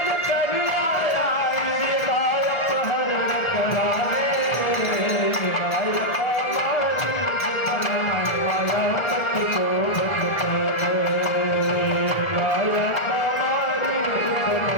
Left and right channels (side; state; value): right; late; 1.7 ms